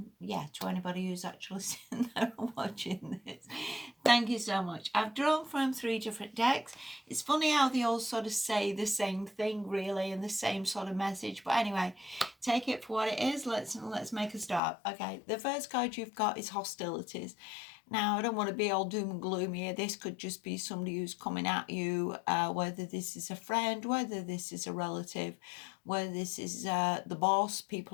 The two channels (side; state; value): right; drops out; at 14.6 s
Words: yeah, to anybody who's actually sitting there and watching this. Thank you so much. I've drawn from 3 different decks. It's funny how they all sort of say the same thing, really, and the same sort of message. But anyway, take it for what it is. Let's make a start. Okay, the first card you've got is hostilities. Now, I don't want to be all doom and gloomy here. This could just be somebody who's coming at you, whether this is a friend, whether this is a relative, whether this is the boss,